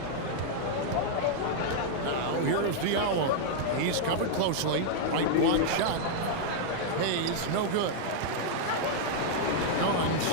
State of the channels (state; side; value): different; both; correlation -0.01